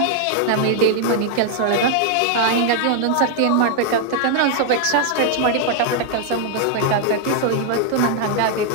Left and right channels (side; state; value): both; different; correlation 0.00